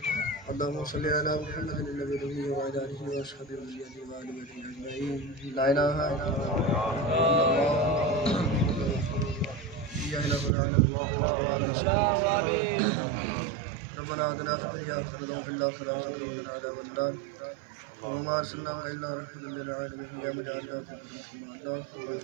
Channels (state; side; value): drops out; left; at 10.5 s